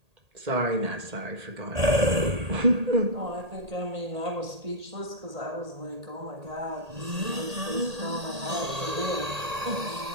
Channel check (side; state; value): left; late; 1.8 ms